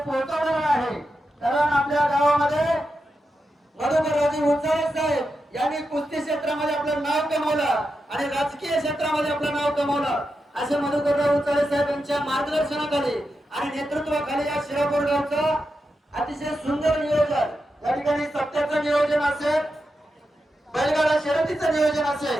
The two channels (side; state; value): both; normal; correlation 0.88